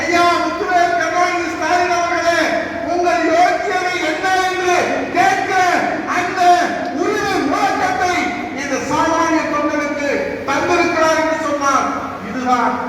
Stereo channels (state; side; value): identical; both; correlation 1.00